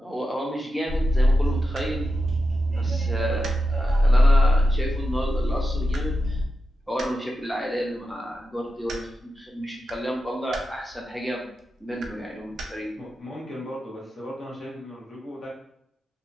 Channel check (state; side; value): normal; both; correlation 0.89